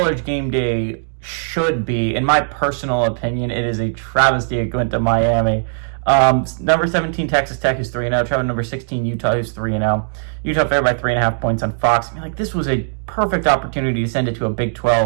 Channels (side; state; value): left; silent; digital silence